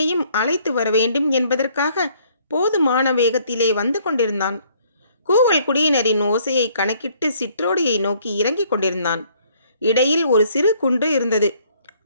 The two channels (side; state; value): both; inverted; correlation -0.62